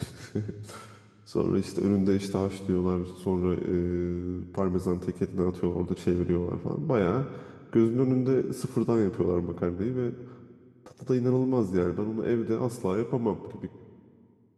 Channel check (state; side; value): identical; both; correlation 1.00